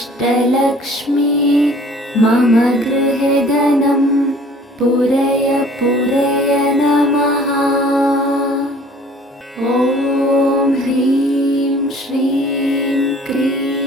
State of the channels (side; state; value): both; normal; correlation 0.52